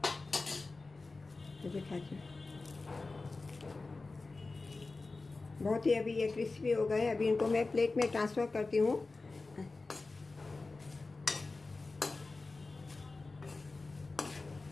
बहुत ही अभी ये क्रिस्पी हो गए हैं। अभी इनको मैं प्लेट में ट्रांसफ़र करती हूँ।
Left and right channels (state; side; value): quieter; right; 3.6 dB